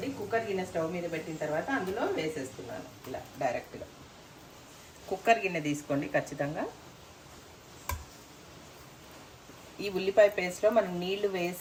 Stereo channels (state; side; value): identical; both; correlation 1.00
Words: కుక్కర్ గిన్నె స్టవ్ మీద పెట్టిన తర్వాత అందులో వేసేస్తున్నాను. ఇలా డైరెక్ట్గా కుక్కర్ గిన్నె తీసుకోండి ఖచ్చితంగా. ఈ ఉల్లిపాయ పేస్ట్లో మనం నీళ్లు